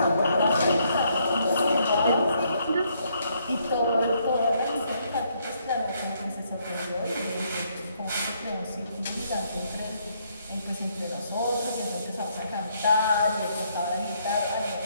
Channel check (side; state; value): both; inverted; correlation -0.71